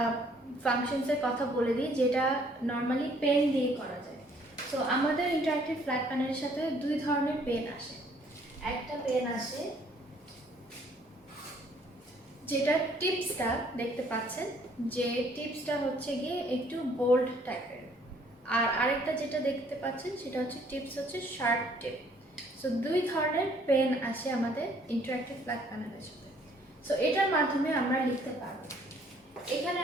ফাংশনসের কথা বলে দিই যেটা নর্মালি পেন দিয়ে করা যায়। সো আমাদের ইন্টারঅ্যাক্টিভ ফ্ল্যাট প্যানেলের সাথে দুই ধরনের পেন আসে। একটা পেন আসে যেটা টিপসটা দেখতে পাচ্ছেন, যে টিপসটা হচ্ছে গিয়ে একটু বোল্ড টাইপের, আর আরেকটা যেটা দেখতে পাচ্ছেন সেটা হচ্ছে টিপস হচ্ছে শার্প টিপ। সো দুই ধরনের পেন আসে আমাদের ইন্টারঅ্যাক্টিভ ফ্ল্যাট প্যানেলের সাথে। সো এটার মাধ্যমে আমরা লিখতে পারবো। এখানে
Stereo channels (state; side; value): normal; both; correlation 0.62